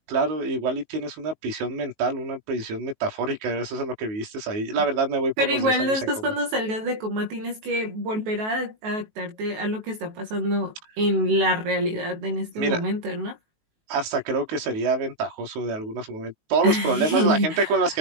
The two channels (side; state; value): left; late; 19 ms